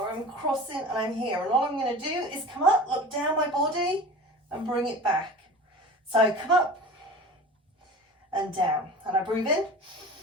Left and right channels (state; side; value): normal; both; correlation 0.37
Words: I'm crossing and I'm here. And all I'm going to do is come up, look down my body and bring it back. So come up and down. And I breathe in